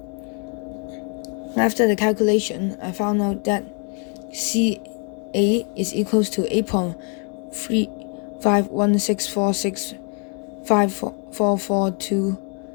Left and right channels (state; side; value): quieter; right; 38.3 dB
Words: After the calculation, I found out that CA is equals to 8.35164654442